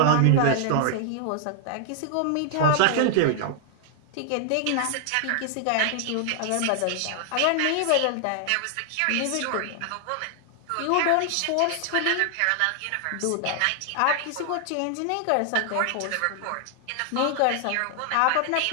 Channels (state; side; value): different; both; correlation 0.00